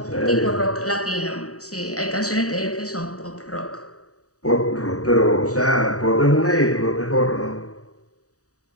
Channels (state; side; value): late; right; 0.66 ms